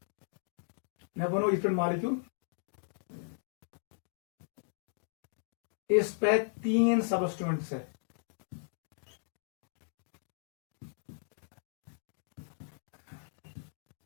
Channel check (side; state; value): right; silent; digital silence